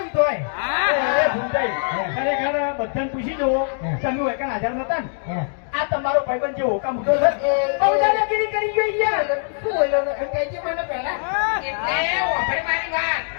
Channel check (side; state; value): right; silent; digital silence